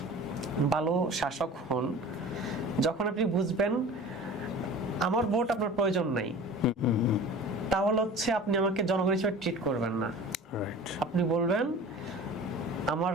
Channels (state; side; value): normal; both; correlation 0.40